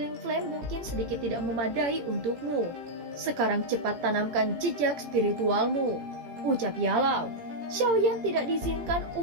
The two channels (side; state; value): left; late; 18 ms